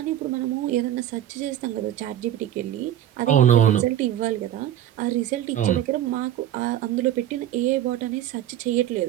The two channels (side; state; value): left; quieter; 11.7 dB